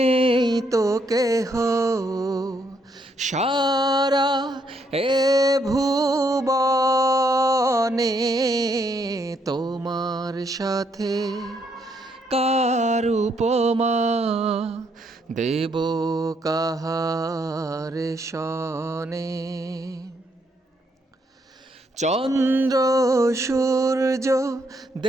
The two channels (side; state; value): both; normal; correlation 0.73